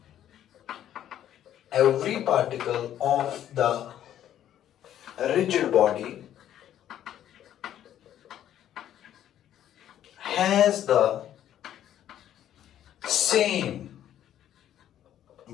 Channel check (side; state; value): right; quieter; 11.2 dB